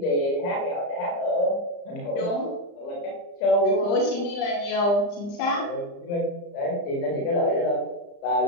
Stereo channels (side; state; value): right; late; 35 ms